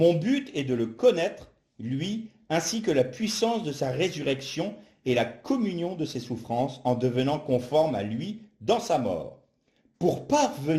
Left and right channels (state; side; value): identical; both; correlation 1.00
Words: but est de le connaître, lui, ainsi que la puissance de sa résurrection et la communion de ses souffrances en devenant conforme à lui dans sa mort. Pour